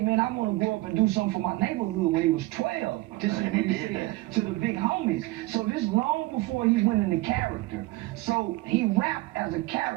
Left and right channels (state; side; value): quieter; left; 19.6 dB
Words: I want to go up and do something for my neighborhood when he was 12. This is And what he he did said that. to the big homies. So this long before he went into character. So he rapped as a